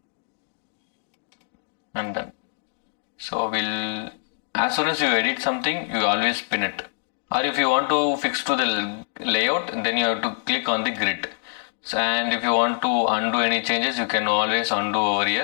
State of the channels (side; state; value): right; silent; digital silence